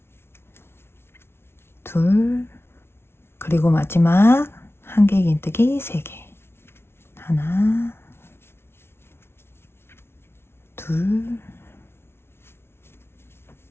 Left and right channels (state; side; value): late; right; 0.12 ms